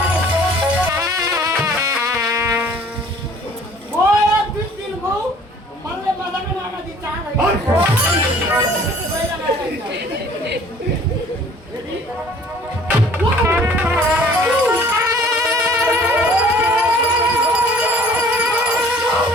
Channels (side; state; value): both; normal; correlation 0.53